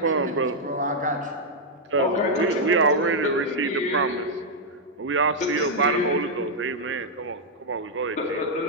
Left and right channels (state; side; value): normal; both; correlation -0.03